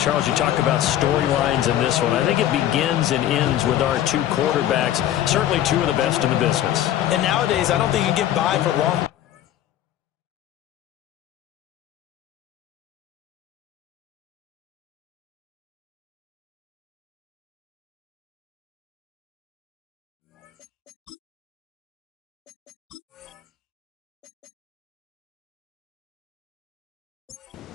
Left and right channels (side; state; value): right; quieter; 12.0 dB